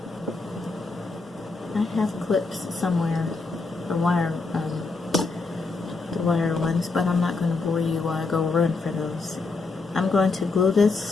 I have clips somewhere, the wire ones, but I'm not going to bore you while I go run for those. I'm going to glue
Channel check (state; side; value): quieter; right; 3.9 dB